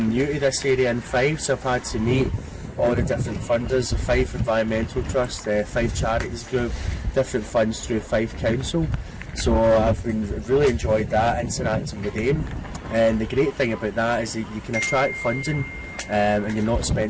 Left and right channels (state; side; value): identical; both; correlation 1.00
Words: new to this area in Fife, so I've had to meet all the different funders, the Fife Environmental Trust, the Fife Charities Group, different funds through Fife Council. So I've really enjoyed that, interacting with them. And the great thing about that is that you can attract funding, and you're not